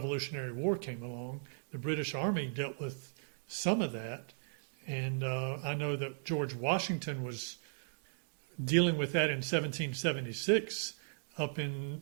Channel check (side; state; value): left; silent; digital silence